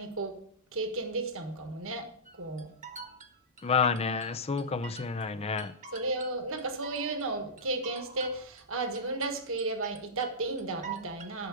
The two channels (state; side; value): normal; both; correlation -0.15